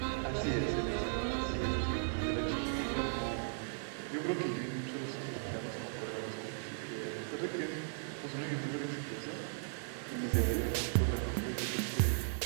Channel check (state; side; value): silent; left; digital silence